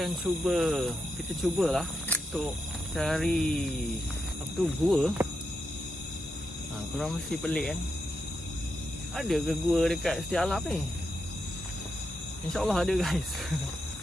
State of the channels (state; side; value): normal; both; correlation 0.85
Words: cubalah untuk cari apa tu, gua. Korang mesti pelik kan, ada ke gua dekat Setia Alam ni? InsyaAllah ada guys.